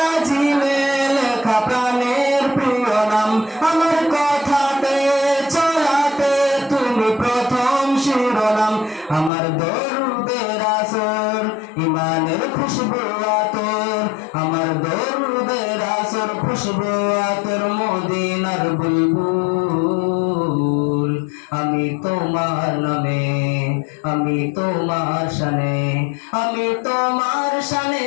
লেখা প্রাণের প্রিয় নাম, আমার কথাতে চলাতে তুমি প্রথম শিরোনাম। আমার দরুদের আসর ইমানের খুশবু আতর, আমার দরুদের আসর খুশবু আতর মদিনার বুলবুল। আমি তোমার নামে, আমি তোমার শানে, আমি তোমার শানে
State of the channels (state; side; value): drops out; right; at 9.3 s